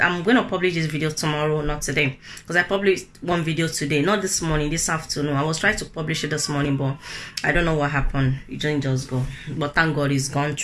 I'm going to publish this video tomorrow, not today, because I published one video today, not this morning, this afternoon. I was trying to publish it this morning, but I don't know what happened. It didn't just go, but thank God it's gone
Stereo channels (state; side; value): identical; both; correlation 1.00